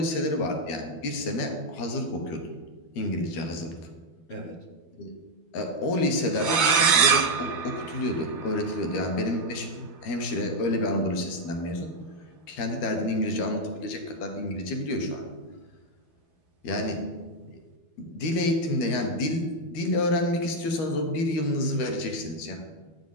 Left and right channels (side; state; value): right; late; 12 ms